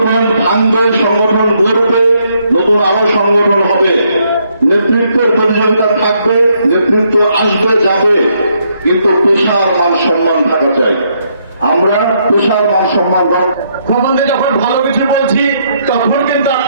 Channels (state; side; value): inverted; both; correlation -0.73